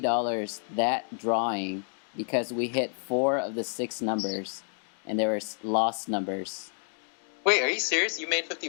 that drawing because we hit 4 of the 6 numbers, and they were Lost numbers. Wait, are you serious? You made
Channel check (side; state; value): right; silent; digital silence